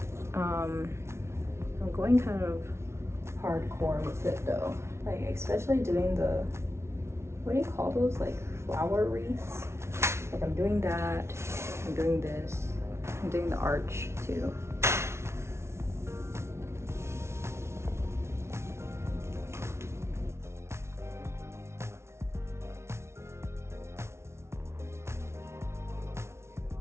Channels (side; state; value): left; late; 0.13 ms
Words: I'm going kind of hardcore with it though, like especially doing the, what do you call those, like flower wreaths? Like I'm doing that, I'm doing this, I'm doing the arch too.